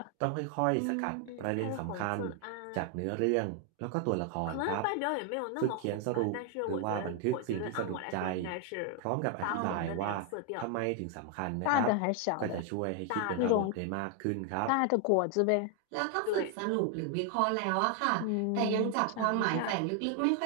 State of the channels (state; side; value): different; both; correlation 0.00